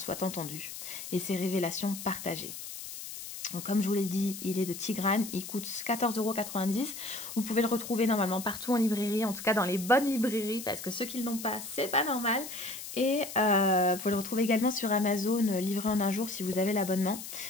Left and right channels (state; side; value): noise; left; hiss, 10 dB below the sound